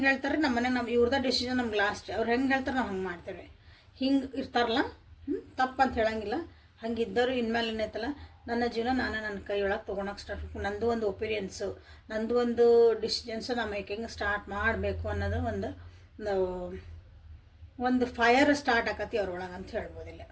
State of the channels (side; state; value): both; identical; correlation 1.00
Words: ಹೇಳ್ತಾರೆ ನಮ್ಮ ಮನೆಗೆ, ನಮ್ಮ ಇವ್ರದ ಡಿಸಿಷನ್ ನಮ್ಗೆ ಲಾಸ್ಟ್. ಅವ್ರು ಹೆಂಗೆ ಹೇಳ್ತಾರೆ ನಾವು ಹಂಗೆ ಮಾಡ್ತೇವೆ. ಹಿಂಗೆ ಇರ್ತಾರಲ್ಲ, ತಪ್ಪಂತ ಹೇಳಂಗಿಲ್ಲ. ಹಂಗಿದ್ದವರು ಇನ್ಮೇಲೆ ಏನೈತಲ್ಲ, ನನ್ನ ಜೀವನ ನಾನು ನನ್ನ ಕೈ ಒಳಗೆ ತೊಗೊಳಕ್ಕೆ ಸ್ಟಾರ್ಟ್ ಮಾಡ್ಬೇಕು, ನಂದು ಒಂದು ಒಪಿನಿಯನ್ಸು, ನಂದು ಒಂದು ಡಿಸಿಷನ್ಸು ನಾವು ಮೇಕಿಂಗ್ ಸ್ಟಾರ್ಟ್ ಮಾಡಬೇಕು ಅನ್ನೋದು ಒಂದು ಫೈರ್ ಸ್ಟಾರ್ಟ್ ಆಕತಿ ಅವ್ರೊಳಗೆ ಅಂತ ಹೇಳ್ಬೋದಿಲ್ಲ.